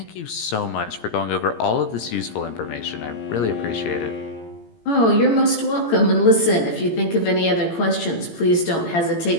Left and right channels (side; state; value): right; late; 18 ms